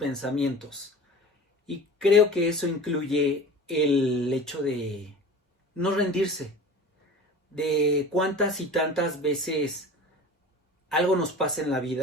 Y creo que eso incluye el hecho de no rendirse, de cuántas y tantas veces algo nos pasa en la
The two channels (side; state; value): both; normal; correlation 0.38